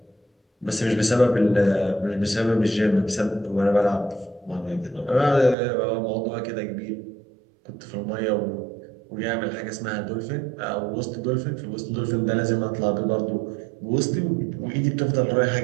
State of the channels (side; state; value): left; drops out; at 5.6 s